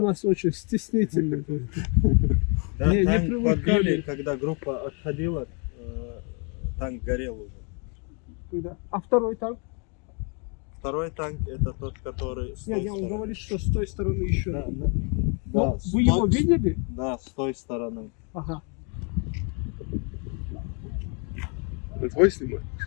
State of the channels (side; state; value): right; quieter; 36.0 dB